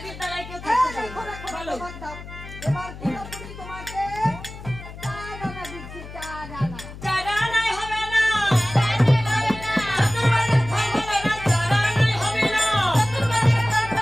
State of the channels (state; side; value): noise; left; hum, 14 dB below the sound